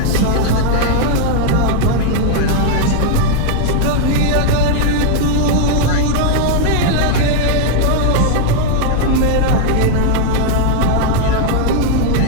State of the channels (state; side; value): different; both; correlation 0.00